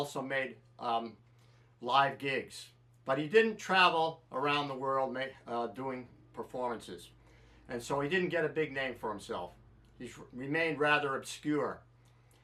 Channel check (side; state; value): both; identical; correlation 1.00